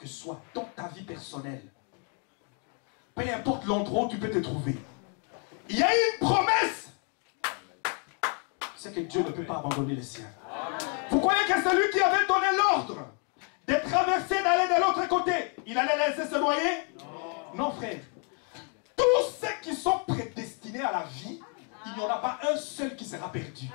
soit dans ta vie personnelle, peu importe l'endroit où tu peux te trouver, il y a une promesse. C'est que Dieu ne peut pas abandonner les siens. Vous croyez que c'est lui qui avait donné l'ordre de traverser, d'aller de l'autre côté, il allait laisser se noyer? Non, frère. Tous ceux qui sont prédestinés à la vie, il n'y en a pas un seul qui sera perdu.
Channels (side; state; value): right; quieter; 39.5 dB